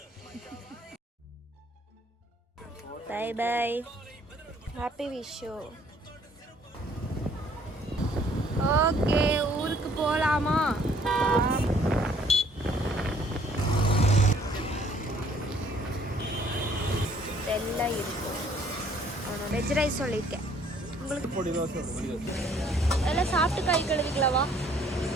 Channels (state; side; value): normal; both; correlation 0.61